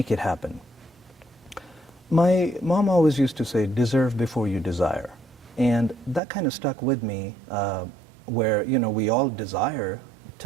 it happen. My mom always used to say, deserve before you desire. And that kind of stuck with me, where, you know, we all desire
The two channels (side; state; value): left; drops out; at 6.2 s